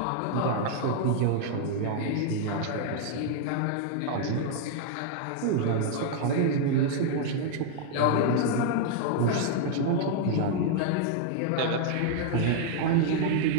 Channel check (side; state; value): both; different; correlation 0.00